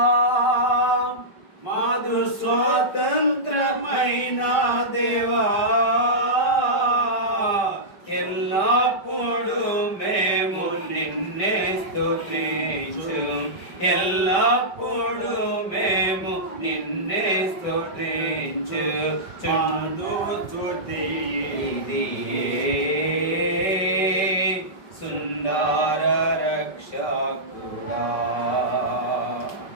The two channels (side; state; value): right; late; 5.1 ms